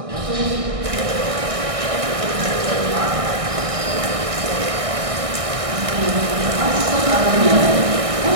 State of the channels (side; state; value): left; late; 1.6 ms